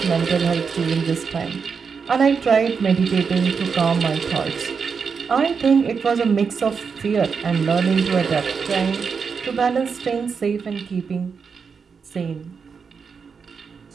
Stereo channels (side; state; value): left; quieter; 5.8 dB